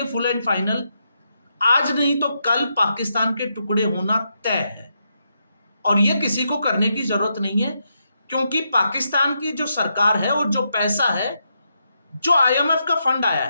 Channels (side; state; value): both; inverted; correlation -0.82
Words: फुल एंड फाइनल, आज नहीं तो कल पाकिस्तान के टुकड़े होना तय है। और ये किसी को करने की जरूरत नहीं है, क्योंकि पाकिस्तान की जो सरकार है और जो पैसा है, जो आईएमएफ का फंड आया